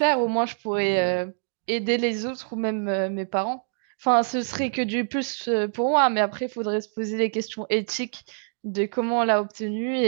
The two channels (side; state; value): left; silent; digital silence